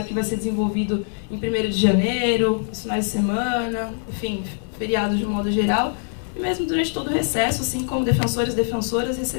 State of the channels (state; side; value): silent; right; 62 dB below the other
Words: que vai ser desenvolvido em 1º de janeiro, os finais de semana, enfim, feriados de um modo geral, e mesmo durante todo o recesso, assim como defensores e defensoras